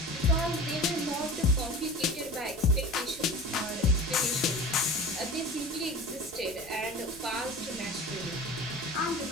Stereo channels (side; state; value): both; normal; correlation 0.36